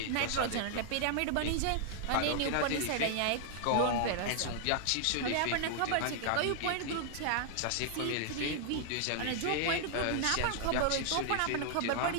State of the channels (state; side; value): different; both; correlation -0.01